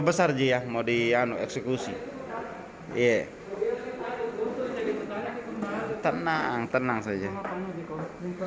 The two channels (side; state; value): both; identical; correlation 1.00